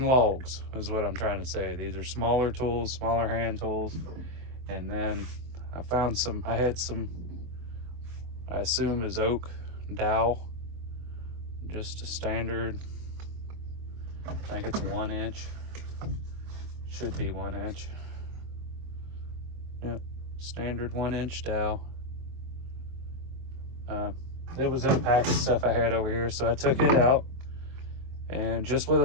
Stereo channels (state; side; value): late; left; 24 ms